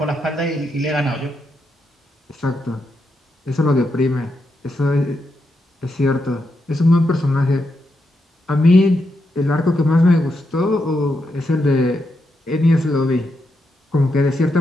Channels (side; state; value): both; normal; correlation 0.83